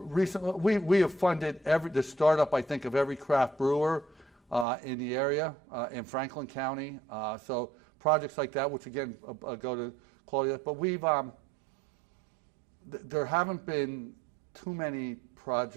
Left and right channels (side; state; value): left; drops out; at 4.7 s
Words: we have funded the startup, I think, of every craft brewer in the area in Franklin County. So projects like that, which again go to quality. But there haven't been too many